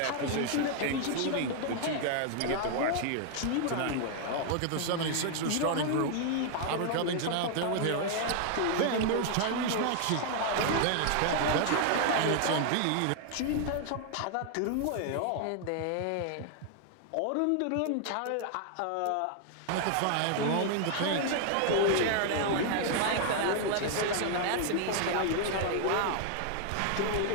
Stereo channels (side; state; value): both; different; correlation 0.00